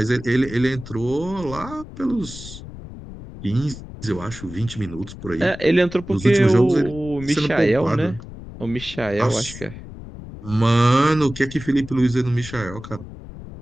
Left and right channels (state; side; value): noise; left; rumble, 14 dB below the sound